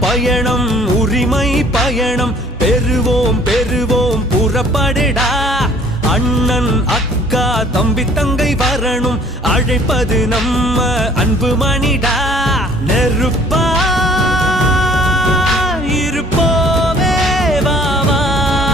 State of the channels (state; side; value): normal; both; correlation 0.55